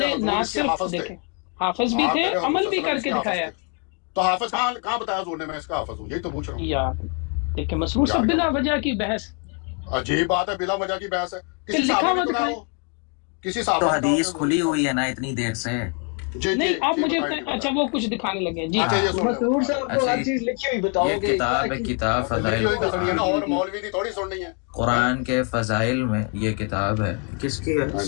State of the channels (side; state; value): right; quieter; 36.1 dB